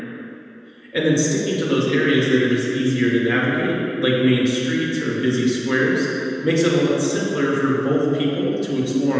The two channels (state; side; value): identical; both; correlation 1.00